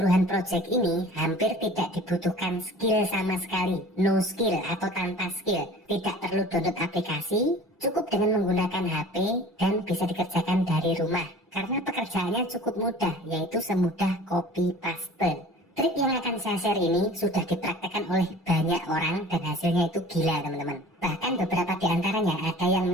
project ini, hampir tidak dibutuhkan skill sama sekali. No skill atau tanpa skill. Tidak perlu download aplikasi, cukup dengan menggunakan HP dan bisa dikerjakan dari rumah. Karena pekerjaannya cukup mudah, yaitu semudah copy paste. Trik yang akan saya share ini sudah dipraktekkan oleh banyak orang dan hasilnya itu gila teman-teman. Bahkan beberapa di antaranya ada yang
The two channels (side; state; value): both; normal; correlation 0.44